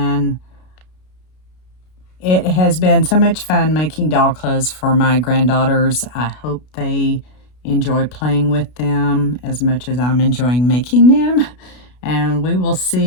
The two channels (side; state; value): right; late; 32 ms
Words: it has been so much fun making doll clothes for my granddaughters. I hope they enjoy playing with them as much as I'm enjoying making them. And we will